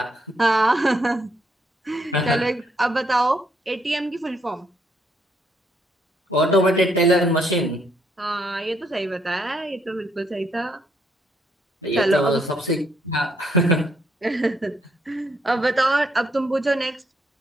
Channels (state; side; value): normal; both; correlation 0.72